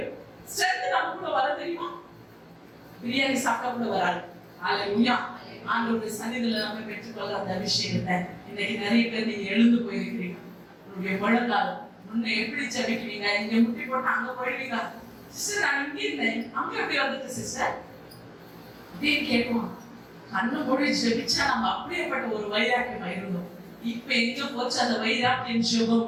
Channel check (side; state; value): both; identical; correlation 1.00